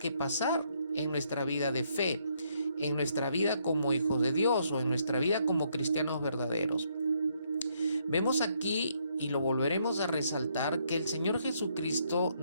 pasar en nuestra vida de fe, en nuestra vida como hijos de Dios o en nuestra vida como cristianos verdaderos? Vemos aquí, y lo volveremos a resaltar, que el Señor Jesucristo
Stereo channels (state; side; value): inverted; both; correlation -0.72